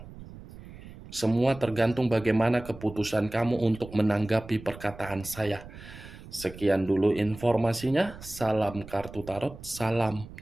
Semua tergantung bagaimana keputusan kamu untuk menanggapi perkataan saya. Sekian dulu informasinya. Salam kartu tarot, salam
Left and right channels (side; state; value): right; noise; rumble, 16 dB below the sound